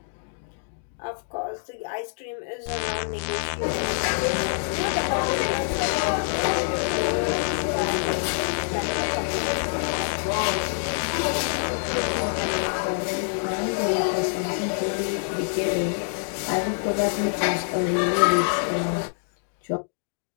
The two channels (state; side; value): silent; right; digital silence